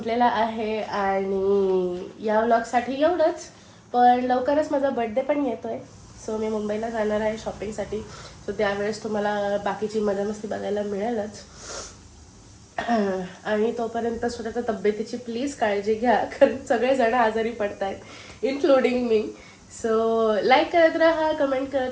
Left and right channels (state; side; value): identical; both; correlation 1.00